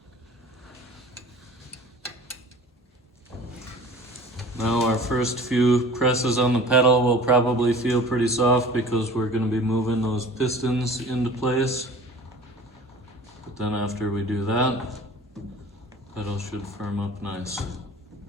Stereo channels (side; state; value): both; normal; correlation 0.43